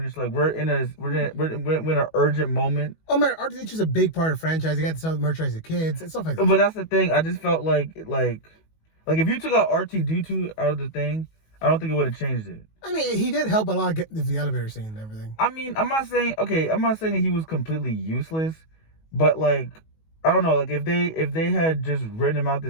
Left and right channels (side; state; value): right; late; 19 ms